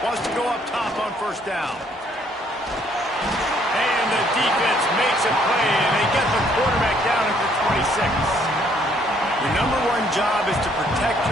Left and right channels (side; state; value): both; normal; correlation 0.66